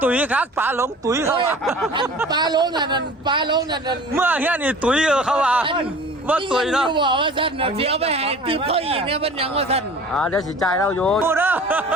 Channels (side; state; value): both; normal; correlation 0.43